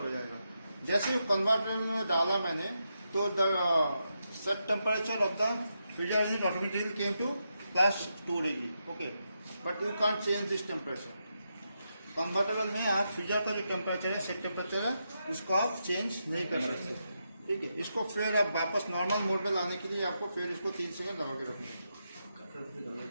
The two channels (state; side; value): inverted; both; correlation -0.84